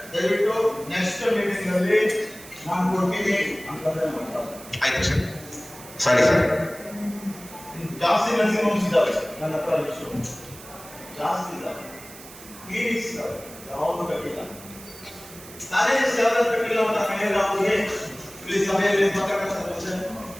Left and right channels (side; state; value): right; noise; hiss, 17 dB below the sound